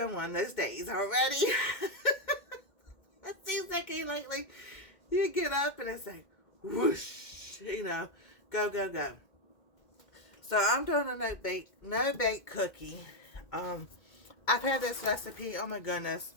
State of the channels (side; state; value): right; late; 2.1 ms